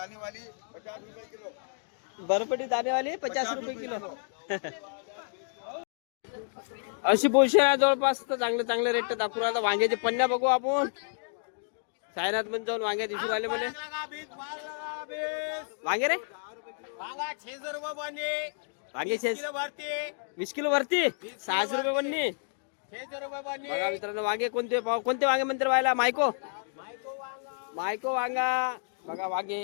50 रुपये किलो. बरबटी दाणेवाली 50 रुपये किलो. अशी पोषण आहे जवळपास. तर चांगले रेट दाखवू. आता वांग्याचे पन्न्या बघू आपण. सायनाथ पण जाऊन वांग्या दिसू राहिले म्हणे. वांगे रे वांगा 600 रुपये बने. वांगे किलो भरते. 20 किलो भरती 600 रुपये बनली. 600 रुपये बने. बघा मित्रांनो, वांगे कोणते वांगे म्हणते व्हायला? मायको वांगा बघा. वांगे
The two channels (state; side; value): silent; right; digital silence